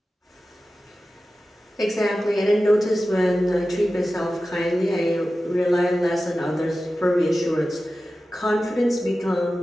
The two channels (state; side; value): normal; both; correlation 0.94